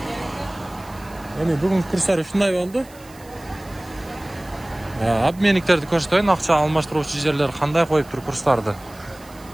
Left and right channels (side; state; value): right; noise; hiss, 24 dB below the sound